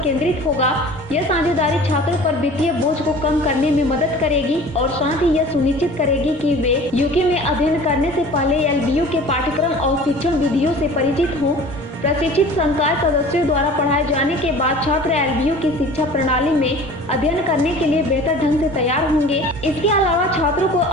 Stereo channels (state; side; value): normal; both; correlation 0.43